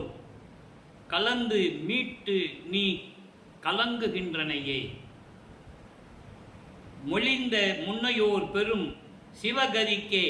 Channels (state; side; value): identical; both; correlation 1.00